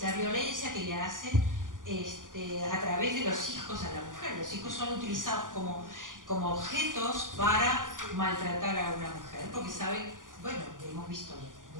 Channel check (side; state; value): left; late; 0.89 ms